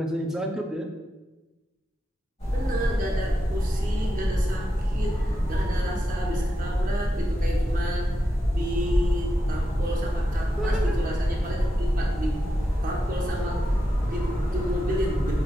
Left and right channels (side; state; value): both; normal; correlation 0.87